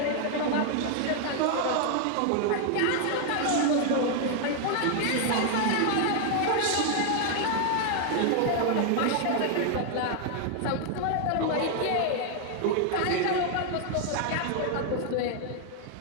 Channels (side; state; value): both; different; correlation 0.00